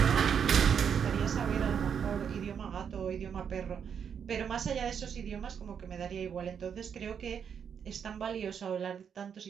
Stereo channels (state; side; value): quieter; left; 7.5 dB